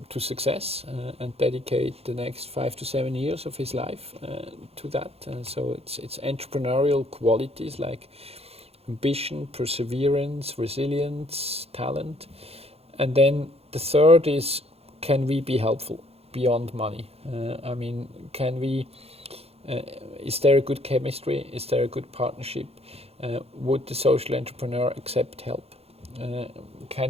to success and dedicate the next 5 to 7 years of his life to that. So it's entrepreneurial qualities like ambition, perseverance, resilience, talent. And then the third is, can we be helpful beyond money? I mean, is there a good chemistry? Is there a good partnership? Would the social entrepreneur accept help?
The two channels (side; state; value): left; late; 0.29 ms